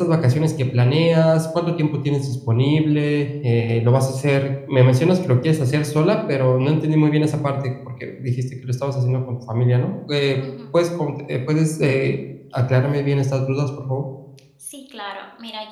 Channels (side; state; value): both; identical; correlation 1.00